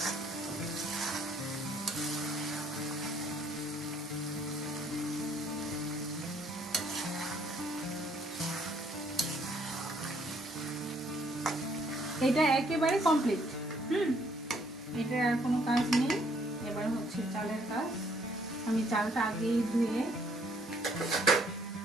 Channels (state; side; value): normal; both; correlation 0.66